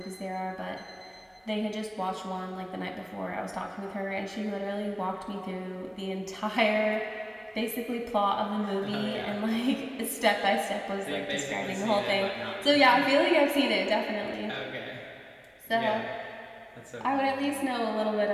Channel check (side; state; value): both; identical; correlation 1.00